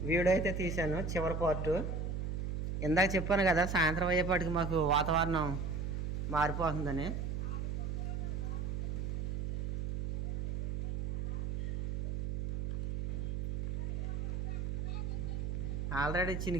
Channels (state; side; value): noise; right; hum, 1 dB below the sound